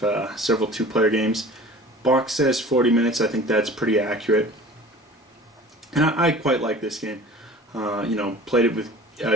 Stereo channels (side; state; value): both; normal; correlation 0.43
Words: several two-player games. Box says 40 minutes. I think that's pretty accurate. And I quite like this game. Played it with